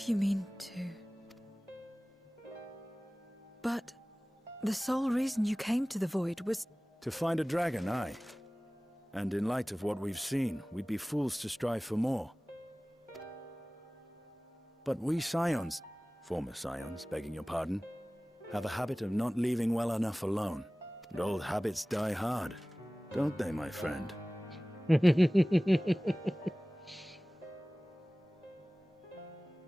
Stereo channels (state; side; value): normal; both; correlation 0.98